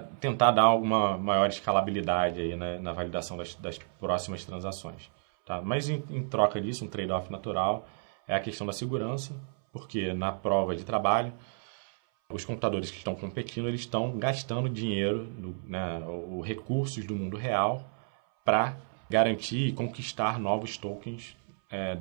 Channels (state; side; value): silent; left; 57 dB below the other